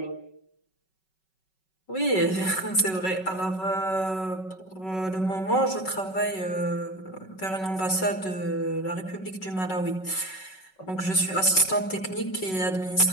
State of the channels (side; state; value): right; late; 5.3 ms